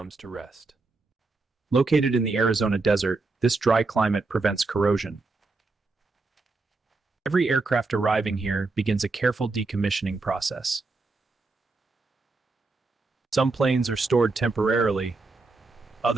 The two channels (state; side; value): quieter; left; 3.7 dB